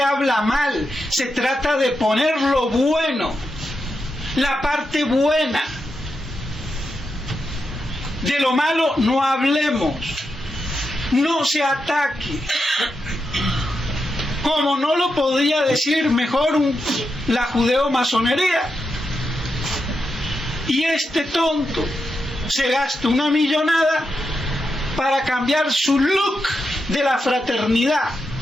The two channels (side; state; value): both; normal; correlation 0.86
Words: habla mal, se trata de poner lo bueno, la parte buena. De lo malo no hablemos, no se ataque. Como no lo podría decir mejor la judeo-masonería. Y este tonto se gasta una millonada para cambiar su look de la fraternidad.